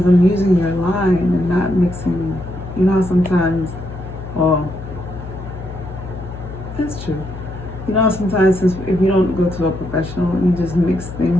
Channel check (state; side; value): noise; left; hum, 11 dB below the sound